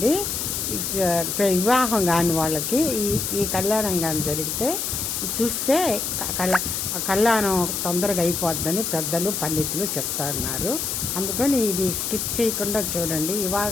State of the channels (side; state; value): left; noise; hiss, 2 dB below the sound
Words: వివాహం కాని వాళ్ళకి ఈ కళ్యాణం కాని జరిగితే చూస్తే కళ్యాణం తొందరగా అయిపోద్దని పెద్దలు పండితులు చెప్తున్నారు. అందుకని ఇది స్కిప్ చేయకుండా చూడండి.